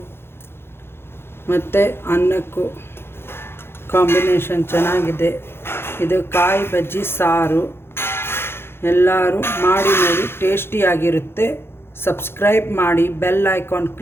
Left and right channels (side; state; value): right; late; 0.11 ms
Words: ಮತ್ತು ಅನ್ನಕ್ಕೂ ಕಾಂಬಿನೇಷನ್ ಚೆನ್ನಾಗಿದೆ. ಇದು ಕಾಯಿ ಬಜ್ಜಿ ಸಾರು. ಎಲ್ಲರೂ ಮಾಡಿ ನೋಡಿ, ಟೇಸ್ಟಿಯಾಗಿರುತ್ತೆ. ಸಬ್ಸ್ಕ್ರೈಬ್ ಮಾಡಿ, ಬೆಲ್ ಐಕಾನ್